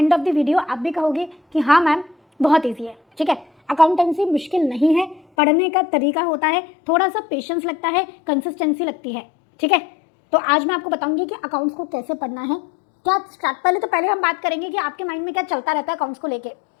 of the video आप भी कहोगे कि हाँ मैम बहुत ईजी है। ठीक है, अकाउंटेंसी मुश्किल नहीं है, पढ़ने का तरीका होता है, थोड़ा सा पेशेंस लगता है, कंसिस्टेंसी लगती है। ठीक है, तो आज मैं आपको बताऊंगी कि अकाउंट्स को कैसे पढ़ना है। क्या स्टार्ट पहले हम बात करेंगे कि आपके माइंड में क्या चलता रहता है अकाउंट्स को लेके,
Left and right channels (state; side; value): drops out; right; at 5.2 s